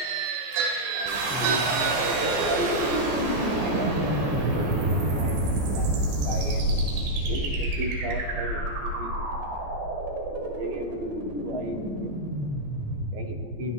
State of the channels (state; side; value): late; left; 14 ms